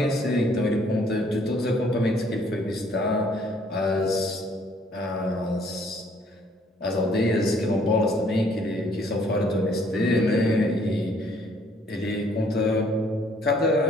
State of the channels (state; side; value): normal; both; correlation 0.62